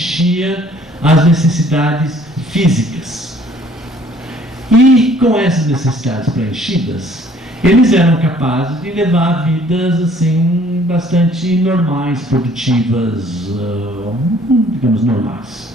as necessidades físicas. E com essas necessidades preenchidas, eles eram capazes de levar vidas assim bastante normais, produtivas, digamos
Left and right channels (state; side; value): normal; both; correlation 0.58